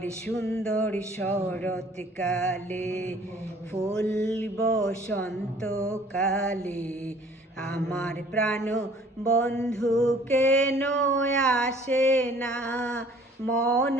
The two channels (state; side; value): normal; both; correlation 0.54